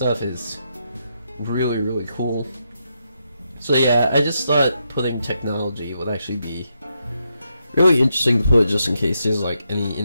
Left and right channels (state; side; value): inverted; both; correlation -0.82